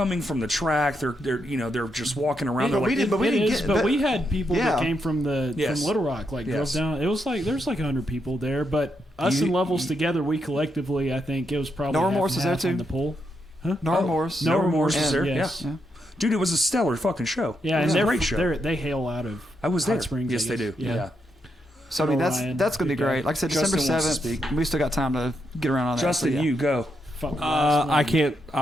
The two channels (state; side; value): normal; both; correlation 0.81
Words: from the track. They're just walking around. Yeah, They're but we like, did- but we It didn't is, get- but but- we had people Yeah. that came from Yes. from Little Rock, like Yes. drove down. It was like there's like 100 people there, but us and Levels together, we collectively, I think it was probably No half Remorse and was there half on too? the pool. No remorse. No Remorse was And- there. yes. Yeah. Yeah. Dude, it was a stellar fucking show. Yeah, it and was a they're great show. they hail out of I was Hot there. Springs, I Yes, they guess. do. Yeah. Yeah. So I mean, Ryan, that's gonna be good guy. great. Like I said, Justin December wants to 7th. speak. We still got time to get around on that. Justin, so, yeah. you go. Fuck the last I one. can't.